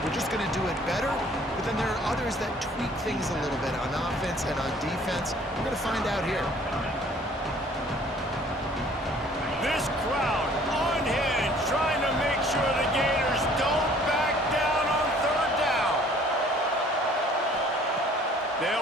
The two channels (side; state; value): both; normal; correlation 0.55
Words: We're just going to do it better. But then there are others that tweak things a little bit on offense and on defense. We're going to find out here. This crowd unhinged, trying to make sure the Gators don't back down on third down.